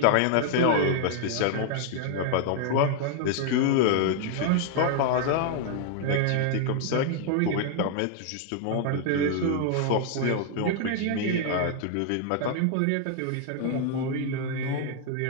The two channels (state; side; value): different; both; correlation 0.00